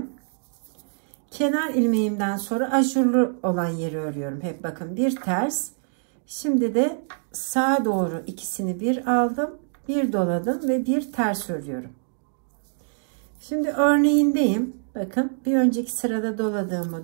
Kenar ilmeğimden sonra ajurlu olan yeri örüyorum. Hep bakın bir ters. Şimdi de sağa doğru ikisini bir aldım. Bir doladım ve bir ters örüyorum. Şimdi örneğindeyim. Bakın bir önceki sırada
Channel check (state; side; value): silent; left; digital silence